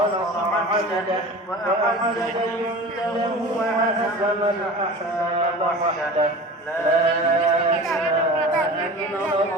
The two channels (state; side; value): normal; both; correlation 0.36